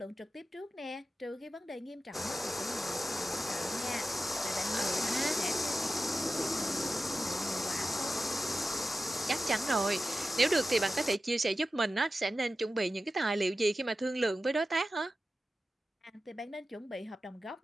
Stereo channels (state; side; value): normal; both; correlation 0.93